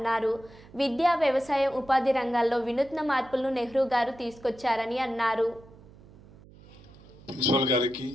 విద్యా, వ్యవసాయం, ఉపాధి రంగాల్లో వినూత్న మార్పులను నెహ్రూ గారు తీసుకొచ్చారని అన్నారు. ప్రిన్సిపల్ గారికి,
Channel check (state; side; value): noise; right; hum, 22 dB below the sound